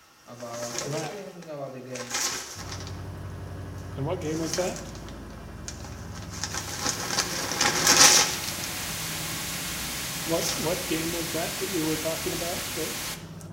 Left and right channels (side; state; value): both; identical; correlation 1.00